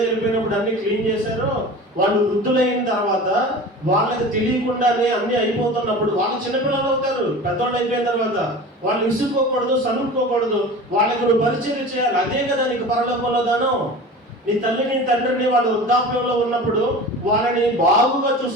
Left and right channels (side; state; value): both; normal; correlation 0.36